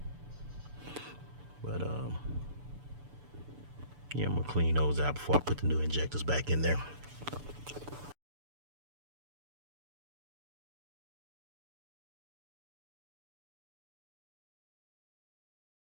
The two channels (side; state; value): left; late; 6.9 ms